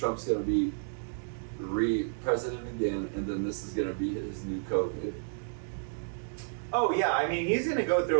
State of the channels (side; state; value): left; silent; digital silence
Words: going to be president again, and then this is going to be his new COVID. Oh yeah, I mean he's gonna go through